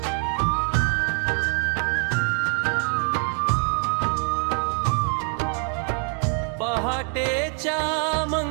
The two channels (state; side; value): quieter; left; 38.5 dB